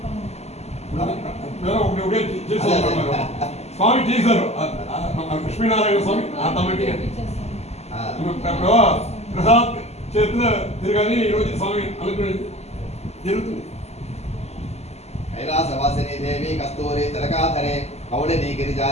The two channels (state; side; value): late; right; 0.31 ms